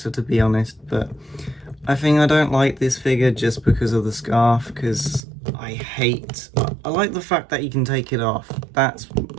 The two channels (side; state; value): left; drops out; at 5.2 s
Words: to be honest, but I think I don't like this figure just because of the scarf, because I like the fact that you can take it off. That's